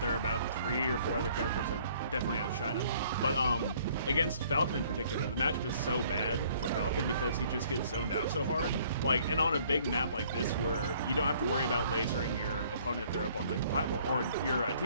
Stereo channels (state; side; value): inverted; both; correlation -0.59